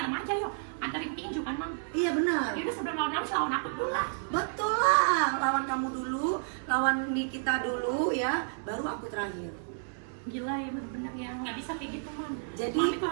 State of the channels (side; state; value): left; silent; 57 dB below the other